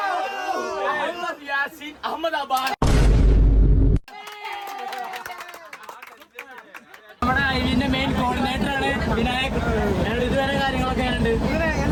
അഹമ്മദാബാദ്. നമ്മുടെ ഐവിന്റെ മെയിൻ കോർഡിനേറ്റർ ആണ് വിനായക്. ഇതുവരെ കാര്യങ്ങളൊക്കെ ഉണ്ട്.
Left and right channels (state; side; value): identical; both; correlation 1.00